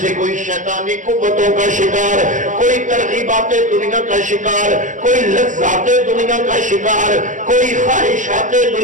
سے کوئی شیطانی قوتوں کا شکار، کوئی ترغیبات دنیا کا شکار، کوئی لذات دنیا کا شکار، کوئی خواہشات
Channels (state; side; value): late; left; 0.37 ms